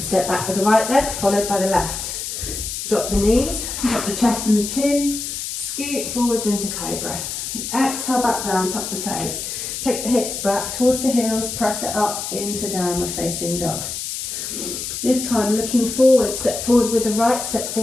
back with the right leg, followed by the left. Drop the knees, drop the chest and the chin. Scoot forwards into cobra. Exhale, back down, tuck the toes. Take the hips back towards the heels, press it up into downward facing dog. This time looking forward, step forward with the right, step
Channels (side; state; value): left; noise; hiss, 5 dB below the sound